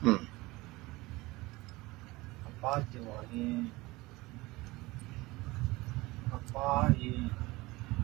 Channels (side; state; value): left; quieter; 21.3 dB